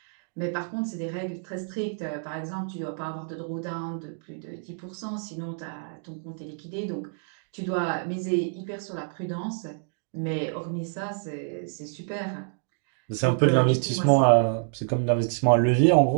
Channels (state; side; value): silent; left; digital silence